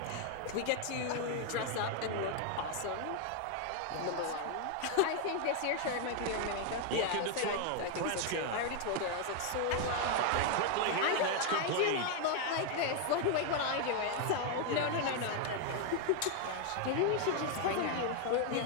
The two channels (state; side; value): different; both; correlation 0.01